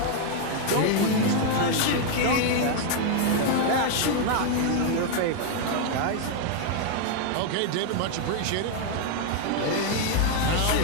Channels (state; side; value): different; both; correlation 0.00